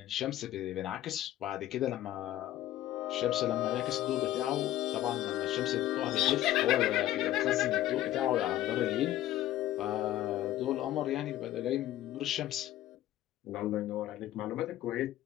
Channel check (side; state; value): right; quieter; 13.8 dB